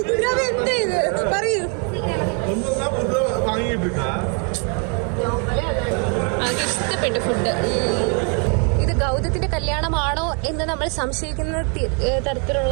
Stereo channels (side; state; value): left; quieter; 37.5 dB